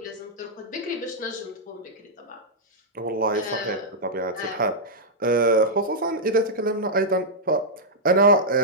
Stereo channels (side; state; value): both; normal; correlation -0.08